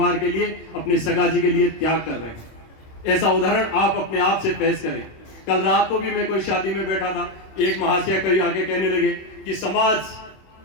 के लिए, अपने सगाजी के लिए त्याग कर रहे हैं। ऐसा उदाहरण आप अपने आप से पेश करें। कल रात को भी मैं कोई शादी में बैठा था, एक महाशय कहीं आके कहने लगे कि समाज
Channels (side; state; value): right; late; 26 ms